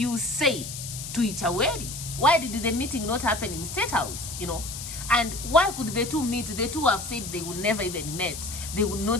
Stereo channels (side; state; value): left; noise; hiss, 8 dB below the sound